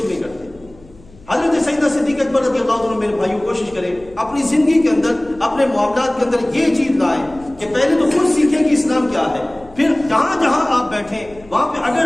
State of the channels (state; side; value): noise; left; hum, 25 dB below the sound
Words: نہیں کرتے۔ حضرت سیدنا صدیق اکبر رضی اللہ عنہ میرے بھائیوں کوشش کریں اپنی زندگی کے اندر، اپنے معاملات کے اندر یہ چیز لائیں کہ پہلے تو خود سیکھیں کہ اسلام کیا ہے، پھر جہاں جہاں آپ بیٹھیں وہاں پہ اگر